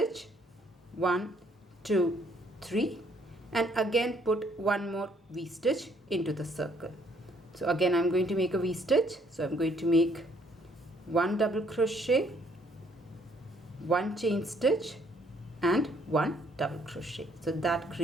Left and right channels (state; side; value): normal; both; correlation 0.66